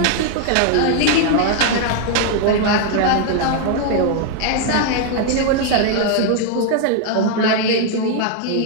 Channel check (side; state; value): both; different; correlation 0.00